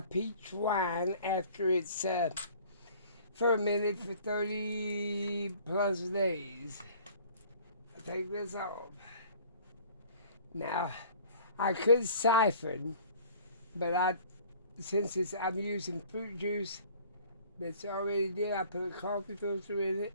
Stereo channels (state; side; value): inverted; both; correlation -0.50